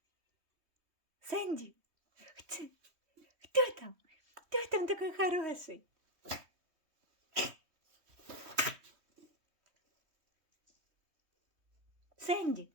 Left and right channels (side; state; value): left; late; 3.2 ms